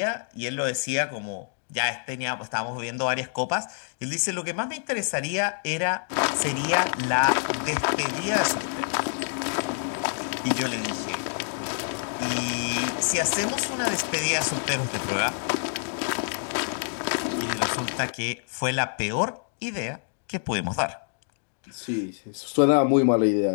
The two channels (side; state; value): right; silent; digital silence